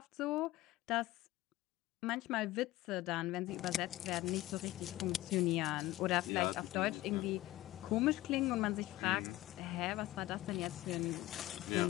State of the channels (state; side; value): quieter; right; 16.9 dB